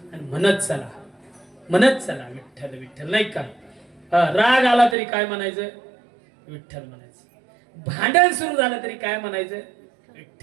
आणि म्हणत चला विठ्ठल विठ्ठल नाही का राग आला तरी काय म्हणायचं विठ्ठल म्हणायचं भांडण सुरू झालं तरी काय म्हणायचं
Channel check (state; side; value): drops out; left; at 5.0 s